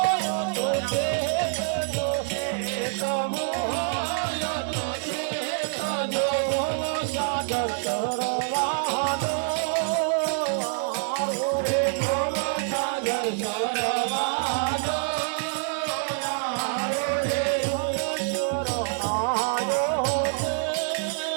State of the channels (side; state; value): left; silent; digital silence